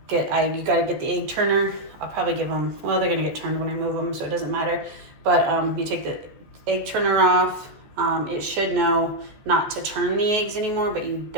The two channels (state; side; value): late; left; 14 ms